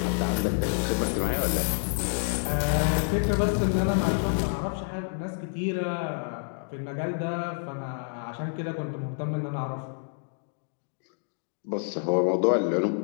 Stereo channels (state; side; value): silent; right; digital silence